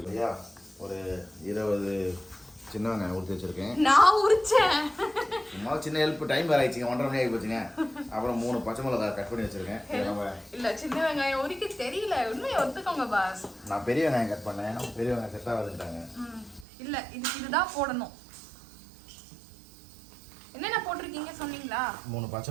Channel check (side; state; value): left; drops out; at 16.7 s